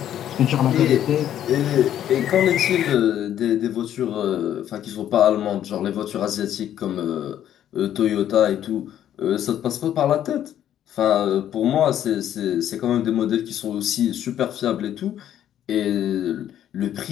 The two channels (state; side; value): quieter; right; 10.9 dB